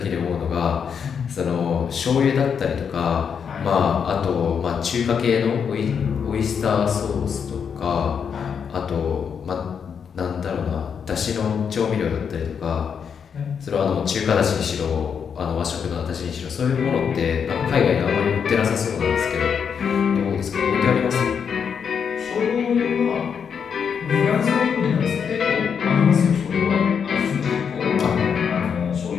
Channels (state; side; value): quieter; right; 7.0 dB